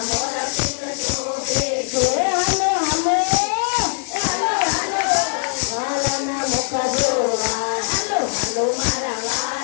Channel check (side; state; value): right; silent; digital silence